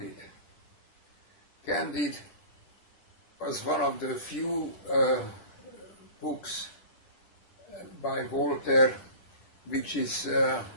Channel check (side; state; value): right; late; 9.9 ms